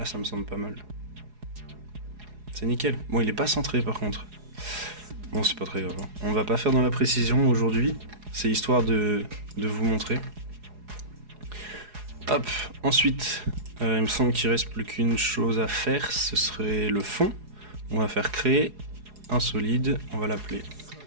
ça me semble pas mal. C'est nickel. Bon, il est pas centré par contre. Bon, c'est pas très grave. On va pas faire dans la précision aujourd'hui. C'est histoire de vous montrer. Hop, ensuite, il me semble qu'il reste plus qu'une chose à faire. Ce serait le fond. On va faire créer un solide. On va l'appeler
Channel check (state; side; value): late; left; 4.8 ms